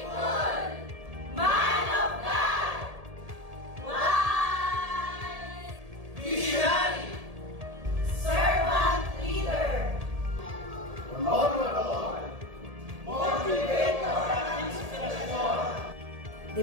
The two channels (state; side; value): late; left; 1.7 ms